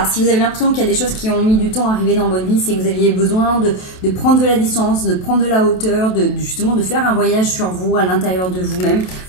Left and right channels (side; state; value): right; late; 27 ms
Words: si vous avez l'impression qu'il y a des choses qui ont mis du temps à arriver dans votre vie, c'est que vous aviez besoin de prendre de la distance, de prendre de la hauteur, justement de faire un voyage sur vous, à l'intérieur de vous-même,